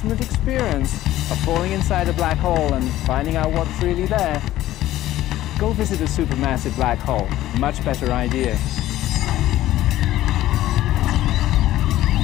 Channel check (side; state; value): right; quieter; 14.5 dB